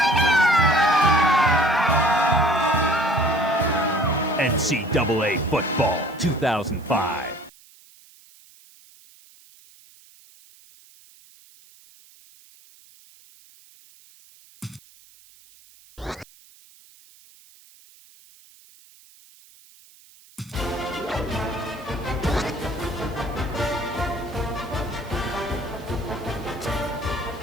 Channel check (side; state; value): right; noise; hiss, 26 dB below the sound